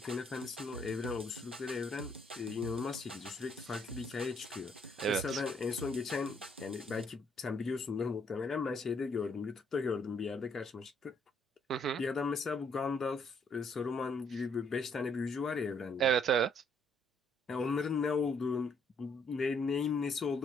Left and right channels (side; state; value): both; normal; correlation 0.68